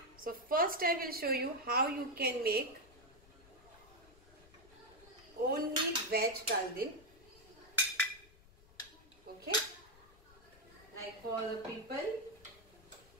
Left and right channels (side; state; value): left; noise; rumble, 24 dB below the sound